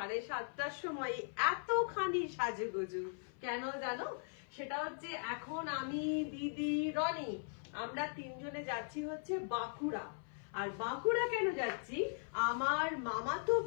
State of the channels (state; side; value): silent; right; 52 dB below the other